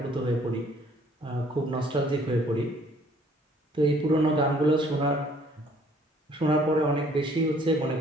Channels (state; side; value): normal; both; correlation 0.59